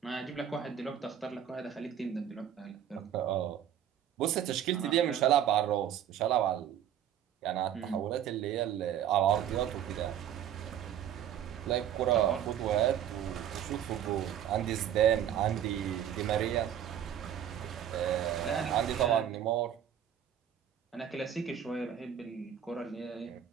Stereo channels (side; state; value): left; quieter; 9.9 dB